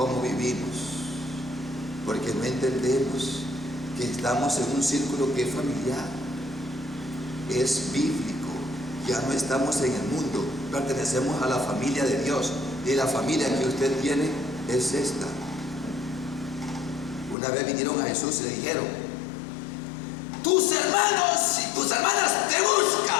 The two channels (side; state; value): right; drops out; at 17.4 s